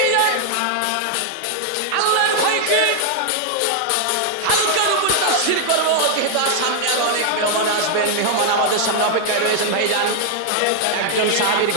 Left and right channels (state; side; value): different; both; correlation 0.00